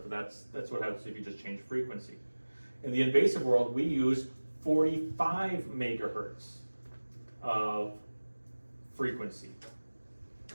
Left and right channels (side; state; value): both; inverted; correlation -1.00